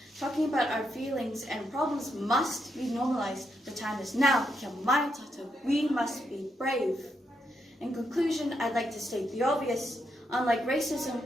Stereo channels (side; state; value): both; normal; correlation 0.81